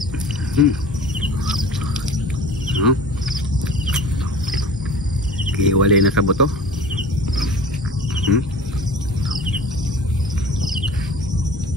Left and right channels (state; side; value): normal; both; correlation 0.40